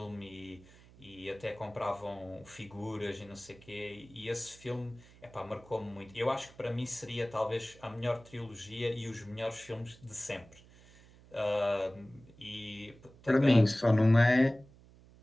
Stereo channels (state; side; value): noise; right; hum, 24 dB below the sound